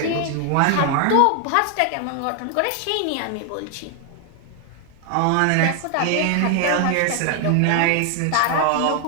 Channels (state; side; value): different; both; correlation 0.00